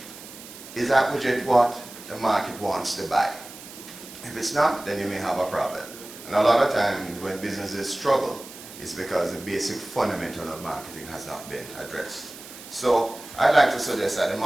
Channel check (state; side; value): noise; right; hiss, 16 dB below the sound